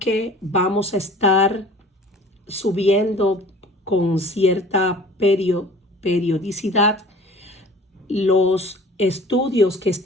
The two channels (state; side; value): normal; both; correlation 0.47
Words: vamos a estar subiendo con cierta periodicidad los estudios que